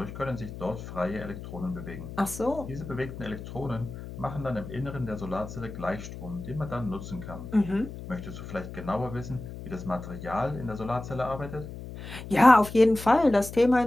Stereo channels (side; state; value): left; noise; hum, 11 dB below the sound